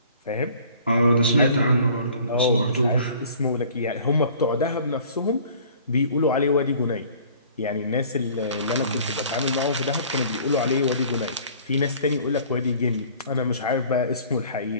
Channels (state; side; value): inverted; both; correlation -0.50